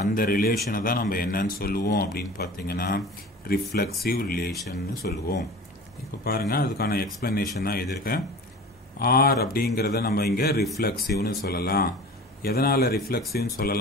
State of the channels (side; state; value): both; normal; correlation 0.39